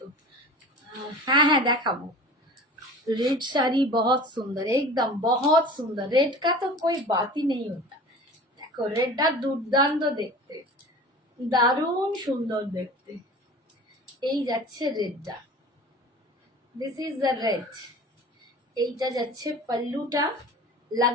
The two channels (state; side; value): normal; both; correlation 0.39